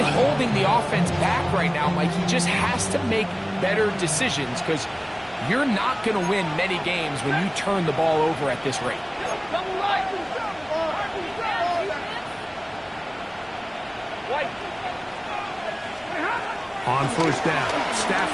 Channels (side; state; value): both; identical; correlation 1.00